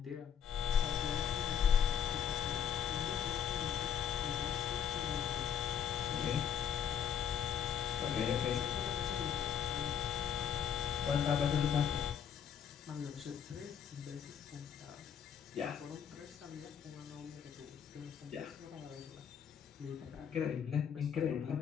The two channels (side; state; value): right; quieter; 8.4 dB